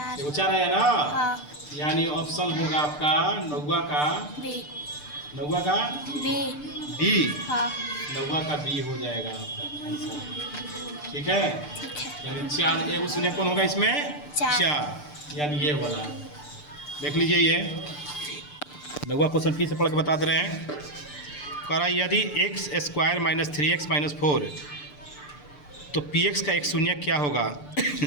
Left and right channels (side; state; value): right; late; 6.8 ms